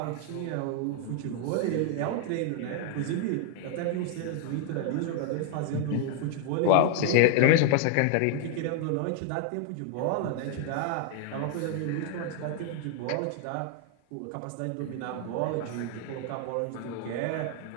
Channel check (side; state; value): both; different; correlation 0.00